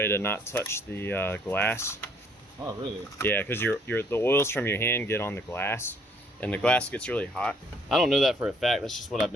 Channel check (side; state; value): both; normal; correlation 0.63